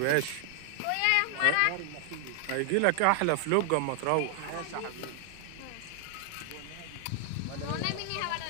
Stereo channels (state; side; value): different; both; correlation 0.00